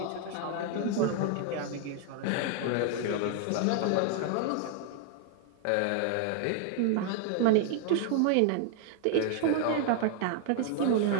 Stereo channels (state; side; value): different; both; correlation 0.00